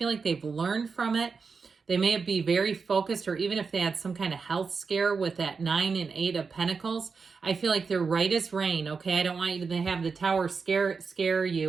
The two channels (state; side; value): quieter; left; 5.1 dB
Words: like they've learned from it. They may be very focused, or even if they had some kind of health scare with that 9 and 8 of Pentacles, I feel like they're right as rain, okay? I don't want you to have the Tower scare